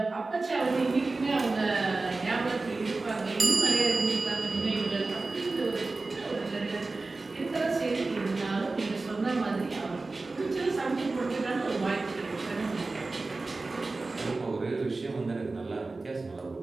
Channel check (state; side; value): quieter; left; 3.5 dB